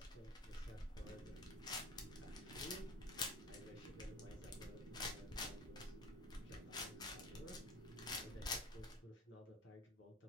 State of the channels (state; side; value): normal; both; correlation 0.35